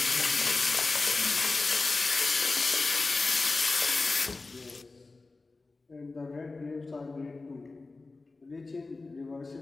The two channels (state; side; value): quieter; right; 3.6 dB